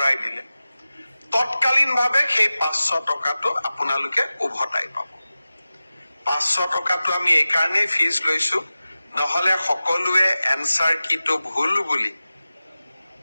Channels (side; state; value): both; inverted; correlation -0.96